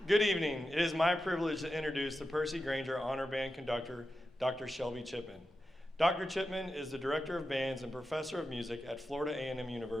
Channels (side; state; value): both; normal; correlation 0.91